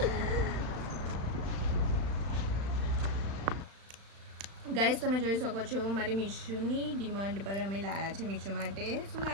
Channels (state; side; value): late; left; 36 ms